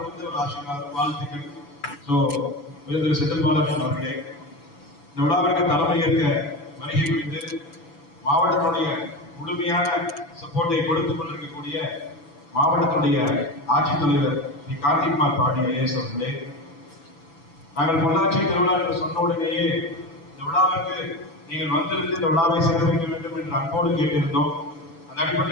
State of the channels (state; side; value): late; right; 7.0 ms